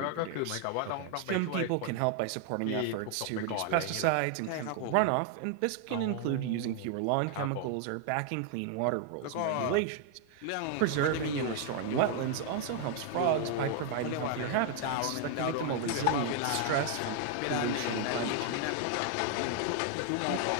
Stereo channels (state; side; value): different; both; correlation 0.00